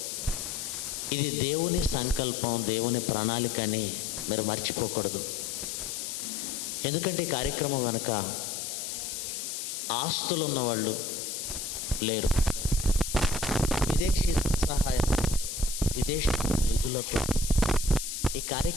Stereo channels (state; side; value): noise; left; hiss, 5 dB below the sound